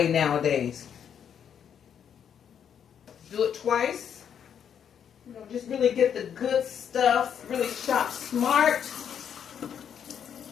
nowadays. Do it twice. You know, just really get the good stuff. Really shop smart.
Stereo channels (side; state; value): right; quieter; 8.3 dB